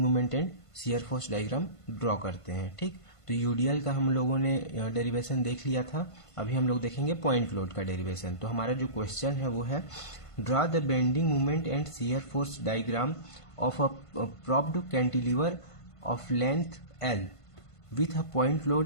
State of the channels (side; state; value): right; late; 1.5 ms